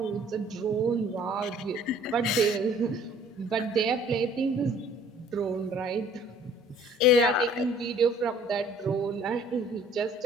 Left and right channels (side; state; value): both; normal; correlation 0.54